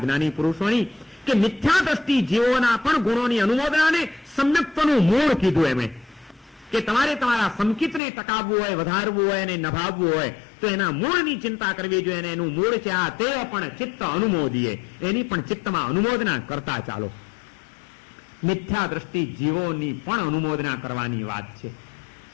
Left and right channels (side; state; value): right; drops out; at 8.0 s